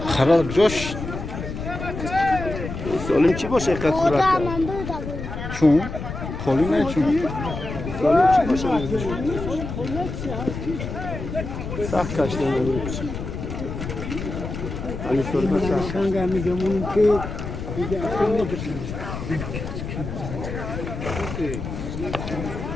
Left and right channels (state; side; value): noise; left; rumble, 7 dB below the sound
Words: خراب جوش سالم چی باشه اینقدر صورت چون خالی نه چون سالم چی باشه سخت کشته نمیشه علی سرمه سخت